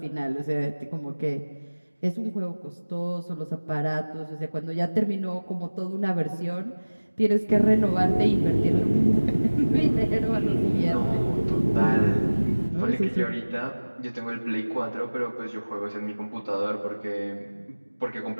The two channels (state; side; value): inverted; both; correlation -1.00